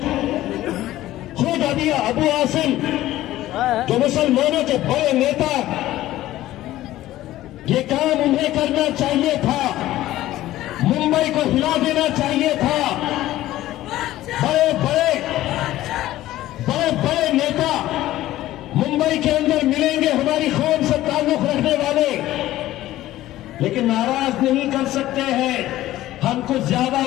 खुद अबू आसिम जो मुसलमानों के बड़े नेता, ये काम उन्हें करना चाहिए था, मुंबई को हिला देना चाहिए था। बड़े बड़े नेता मुंबई के अंदर मिलेंगे हमारी कौम से ताल्लुक रखने वाले, लेकिन नाराज नहीं कर सकते हैं। हम कुछ ज्यादा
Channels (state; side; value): quieter; right; 15.1 dB